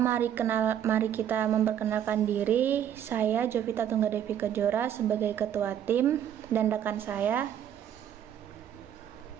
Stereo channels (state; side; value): quieter; left; 9.9 dB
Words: mari kita memperkenalkan diri. Saya Jovita Tunggadevi Kejora sebagai ketua tim dan rekan saya.